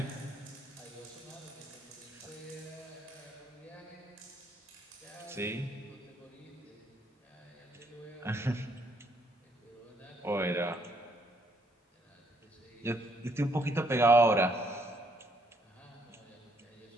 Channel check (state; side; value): normal; both; correlation 0.69